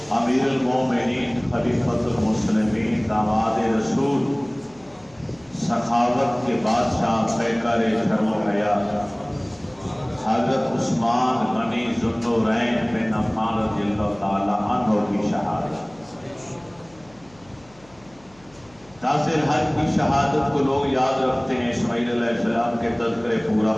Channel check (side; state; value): left; noise; hum, 27 dB below the sound